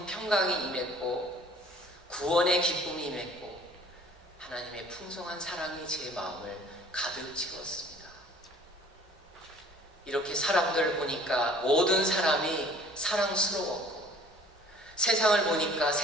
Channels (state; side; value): normal; both; correlation 0.52